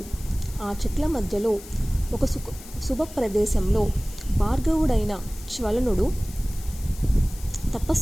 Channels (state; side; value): noise; left; hiss, 17 dB below the sound